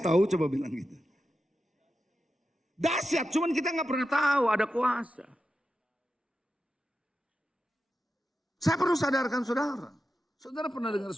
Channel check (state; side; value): normal; both; correlation 0.90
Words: tahu, coba bilang gitu. Dahsyat, cuman kita nggak pernah tahu ada kuasa. Saya perlu sadarkan saudara. Saudara pernah dengar